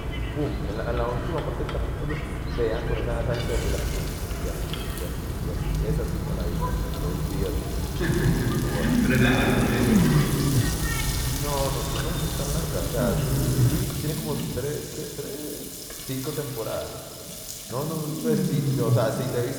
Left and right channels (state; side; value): identical; both; correlation 1.00